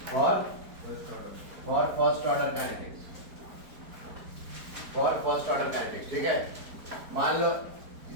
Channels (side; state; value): left; late; 4.5 ms